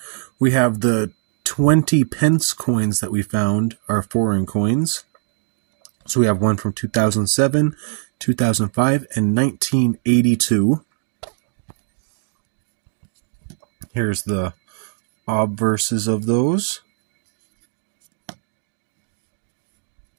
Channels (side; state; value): left; silent; digital silence